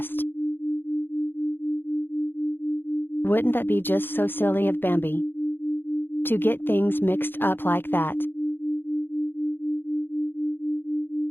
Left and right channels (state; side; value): late; right; 0.10 ms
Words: Wouldn't that be just so silly of Bambi to get things mixed up like that?